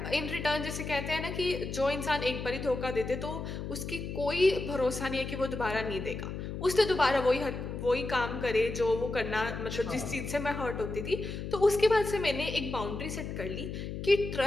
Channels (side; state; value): left; noise; hum, 6 dB below the sound